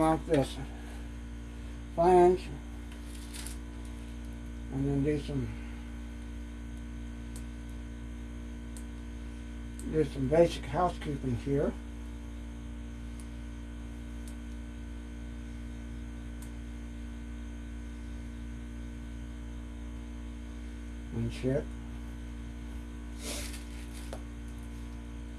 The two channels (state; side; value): identical; both; correlation 1.00